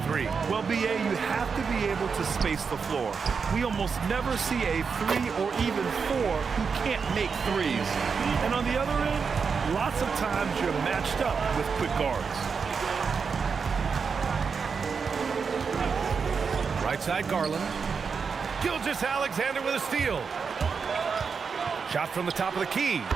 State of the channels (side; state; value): left; quieter; 5.6 dB